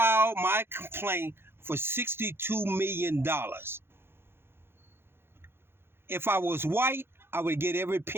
my complaint for $62 million. If I was white, I would get every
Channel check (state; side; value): late; left; 0.11 ms